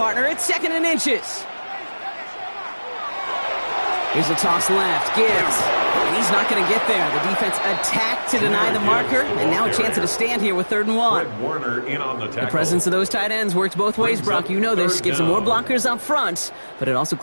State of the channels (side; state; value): both; inverted; correlation -1.00